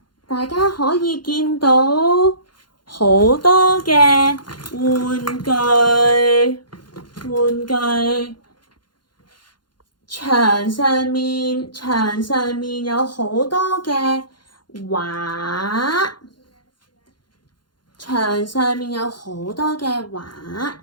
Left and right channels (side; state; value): right; late; 0.71 ms